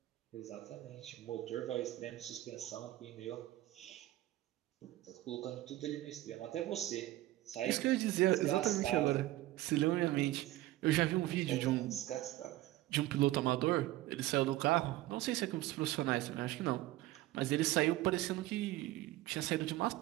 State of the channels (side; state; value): left; quieter; 16.2 dB